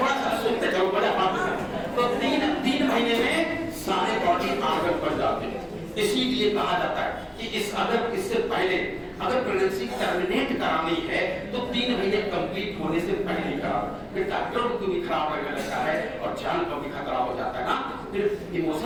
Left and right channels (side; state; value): both; identical; correlation 1.00